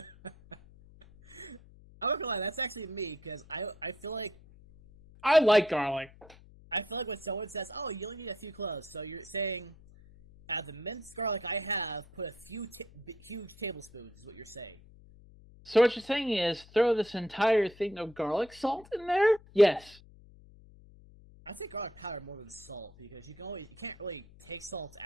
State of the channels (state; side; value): noise; left; hum, 23 dB below the sound